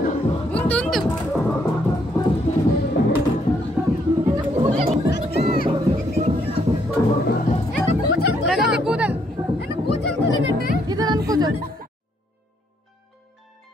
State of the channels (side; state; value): both; normal; correlation 0.71